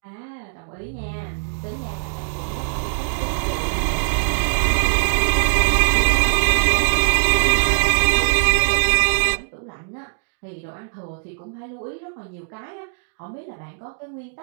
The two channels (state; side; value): silent; left; digital silence